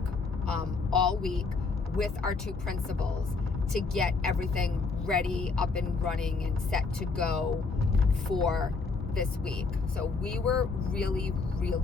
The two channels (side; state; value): right; quieter; 4.3 dB